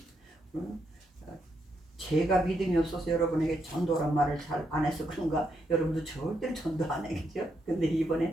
제가 믿음이 없어서 여러분에게 전도란 말을 잘 안 해서 그런가 여러분도 절대로 전도 안 해겠죠. 근데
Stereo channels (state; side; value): normal; both; correlation 0.79